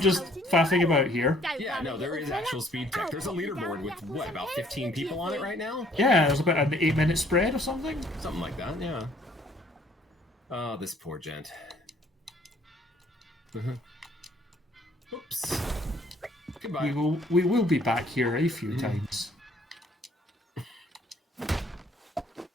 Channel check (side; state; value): both; normal; correlation 0.61